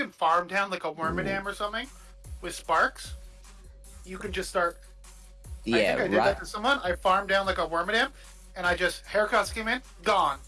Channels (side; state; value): both; identical; correlation 1.00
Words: farm down like a Wormadam or something with Sparks, you can just start... Yeah, I think I did that to someone. I farmed down like a Wormadam, and I just... Haircuts came in, gone.